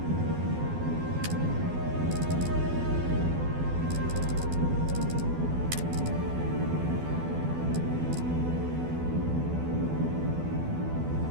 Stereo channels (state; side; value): late; left; 12 ms